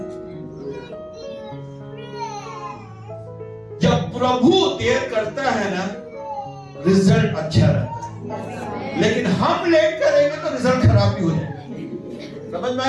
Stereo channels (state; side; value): identical; both; correlation 1.00